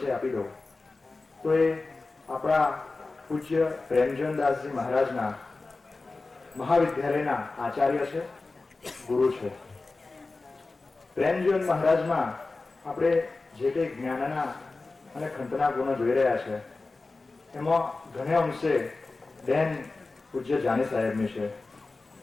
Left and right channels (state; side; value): quieter; right; 3.6 dB